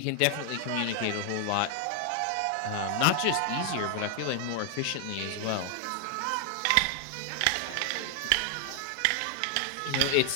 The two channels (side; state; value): both; different; correlation 0.00